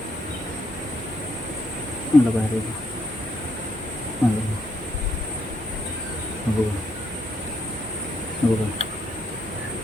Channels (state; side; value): normal; both; correlation 0.74